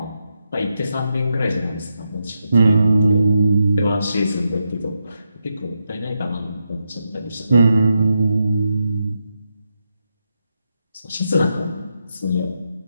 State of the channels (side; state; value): both; inverted; correlation -0.85